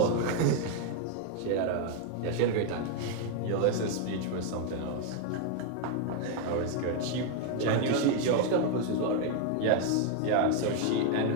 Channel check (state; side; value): different; both; correlation 0.01